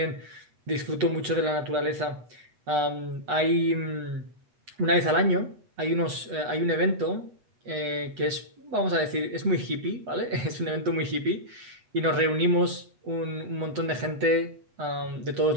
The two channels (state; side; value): late; left; 8.1 ms